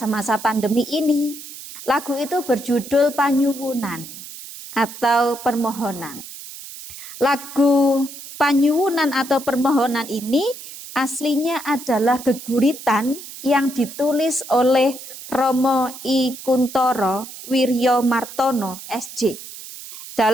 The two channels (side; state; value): right; noise; hiss, 13 dB below the sound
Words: pandemi ini. Lagu itu berjudul Panyuwunan atau Permohonan. Lagu Panyuwunan atau Permohonan ini aslinya adalah geguritan yang ditulis oleh Romo I Kuntoro Wiryo Martono SJ